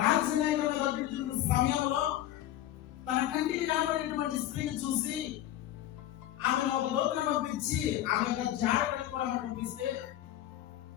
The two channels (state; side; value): quieter; right; 13.1 dB